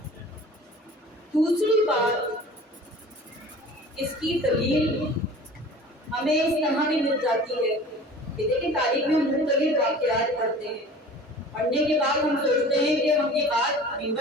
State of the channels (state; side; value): normal; both; correlation 0.43